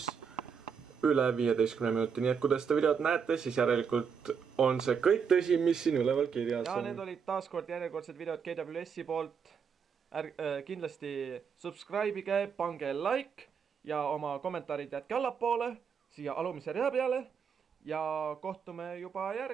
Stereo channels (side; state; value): left; quieter; 6.6 dB